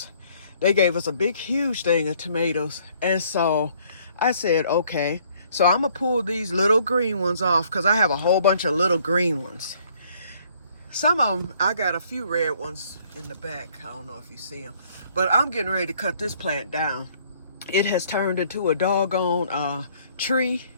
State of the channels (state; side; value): inverted; both; correlation -0.62